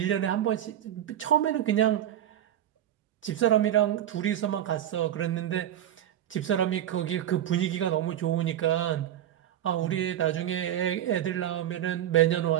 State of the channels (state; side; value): quieter; left; 11.3 dB